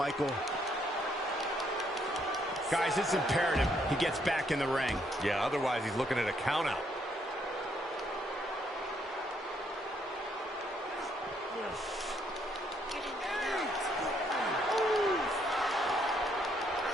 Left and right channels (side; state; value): both; normal; correlation 0.71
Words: Guys, it's imperative he gets back in the ring. Yeah, otherwise he's looking at a count-out.